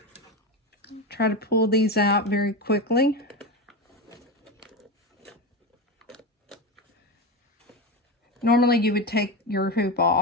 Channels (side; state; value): both; normal; correlation 0.19